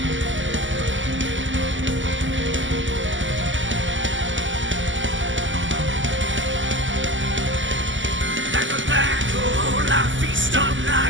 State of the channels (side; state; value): left; late; 0.55 ms